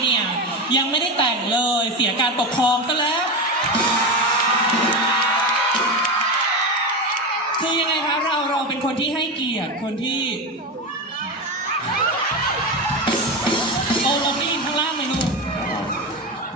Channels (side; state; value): both; normal; correlation 0.18